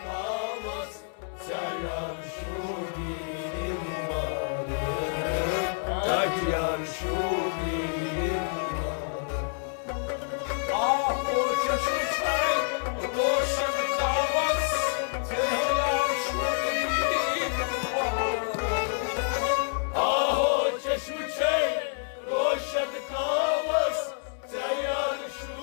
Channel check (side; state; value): right; silent; 59 dB below the other